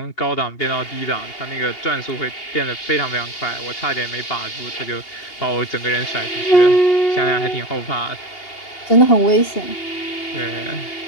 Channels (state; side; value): late; right; 2.8 ms